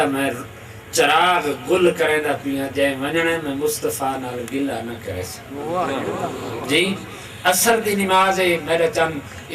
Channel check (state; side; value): identical; both; correlation 1.00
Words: میں چراغ گل کریں دا پیا جائے ونجنے میں مصطفیٰ نال گلہ نہ کرے سکتا. جی اثر دی نماز ہے میرے چند